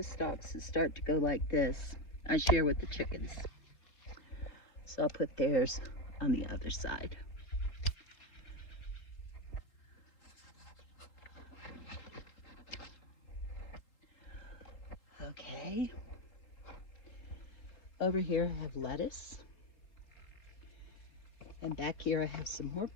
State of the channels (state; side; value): late; right; 3.8 ms